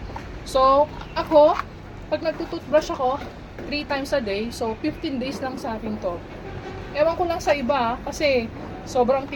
So, ako, pag nagtututbrush ako, 3 times a day, so 15 days lang sa akin to. Ewan ko lang sa iba, kasi sobrang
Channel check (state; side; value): identical; both; correlation 1.00